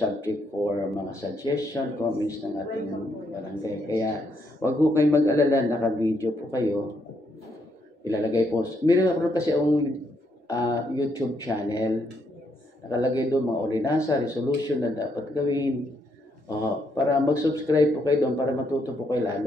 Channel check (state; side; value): normal; both; correlation 0.76